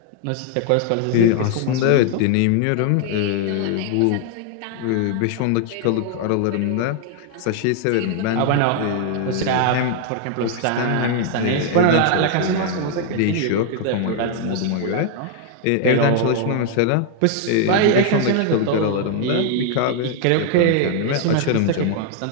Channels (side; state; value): both; different; correlation 0.00